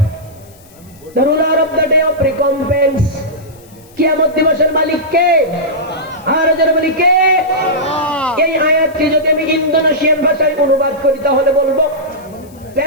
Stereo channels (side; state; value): left; noise; hiss, 27 dB below the sound